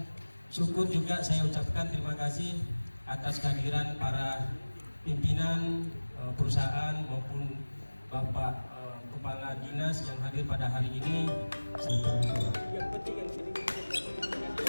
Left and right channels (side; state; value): both; inverted; correlation -1.00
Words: syukur juga saya ucapkan terima kasih atas kehadiran para pimpinan perusahaan maupun Bapak Kepala Dinas yang hadir pada hari ini.